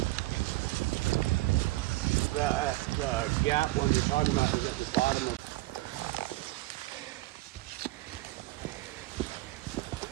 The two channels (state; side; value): quieter; left; 19.7 dB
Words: The gap one you're talking about is at the bottom of.